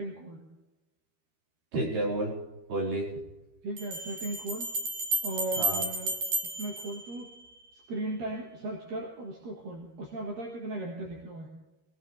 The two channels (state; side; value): late; left; 13 ms